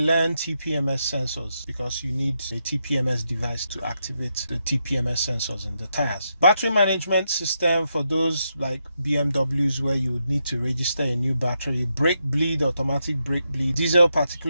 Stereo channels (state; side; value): inverted; both; correlation -0.83